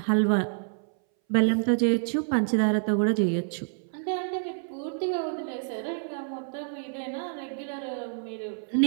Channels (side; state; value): left; silent; 59 dB below the other